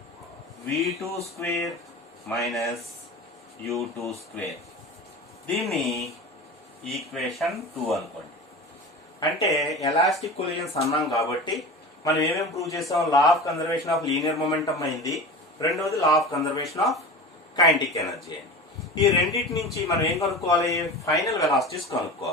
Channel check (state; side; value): normal; both; correlation 0.32